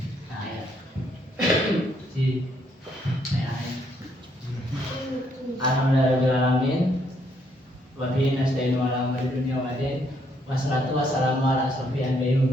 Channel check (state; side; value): normal; both; correlation 0.71